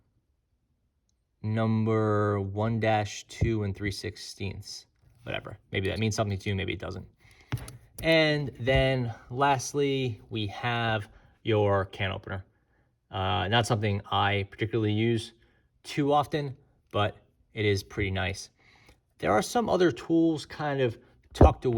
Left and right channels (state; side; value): identical; both; correlation 1.00